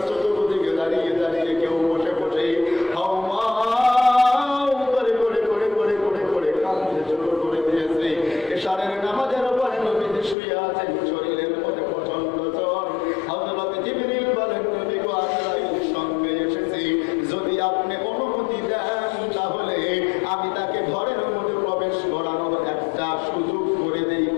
চতুর্দিকে দাঁড়িয়ে দাঁড়িয়ে কেউ বসে বসে হাওমাও করে করে করে করে করে করে কাঁদতে শুরু করে দিয়েছে। এশারের নামাজের পরে নবীজি শুয়ে আছেন, শরীরের মধ্যে প্রচন্ড জ্বর। হযরত জিবরিল বলেন, নবী গো আজরাইল সঙ্গে এসেছে, যদি আপনি অনুমতি দেন তাহলে আমি তাকে ঘরের মধ্যে প্রবেশ করানোর একটা সুযোগ করে দেই।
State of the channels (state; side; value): drops out; right; at 10.4 s